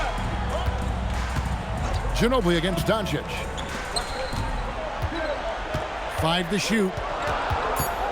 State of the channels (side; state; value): both; identical; correlation 1.00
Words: Ginobili against Doncic. 5 to shoot.